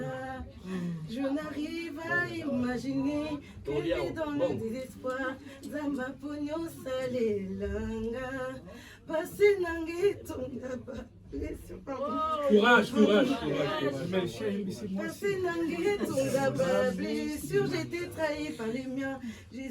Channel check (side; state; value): both; identical; correlation 1.00